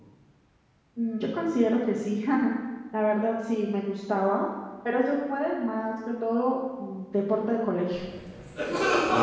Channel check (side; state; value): both; identical; correlation 1.00